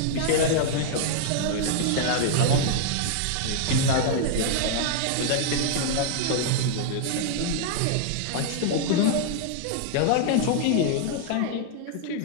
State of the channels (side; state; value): both; different; correlation -0.01